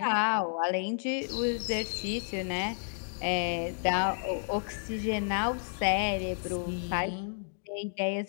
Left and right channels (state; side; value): silent; right; digital silence